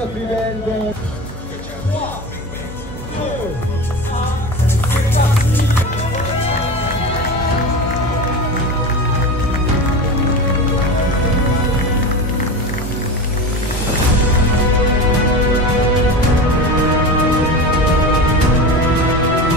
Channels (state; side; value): normal; both; correlation 0.27